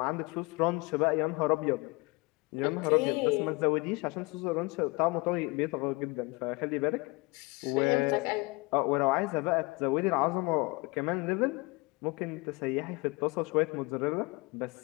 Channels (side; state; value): right; quieter; 25.9 dB